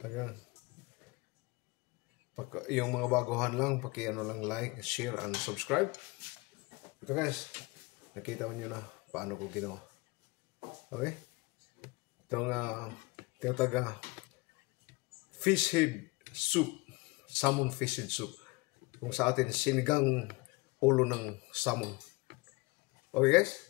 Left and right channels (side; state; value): right; quieter; 24.7 dB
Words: Yung mga baguhan lang, paki-ano lang like, share, and subscribe. Ito guys, nakita mo nyo na paano ko ginawa. Okay? Itong tinataga fish head soup, salmon fish head soup. Kung sa atin, sinigang ulo ng salmon. Okay